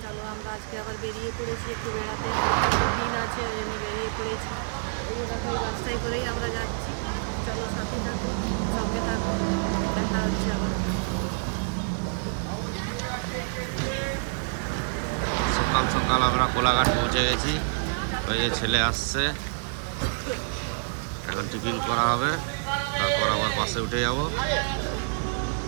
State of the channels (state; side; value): silent; left; digital silence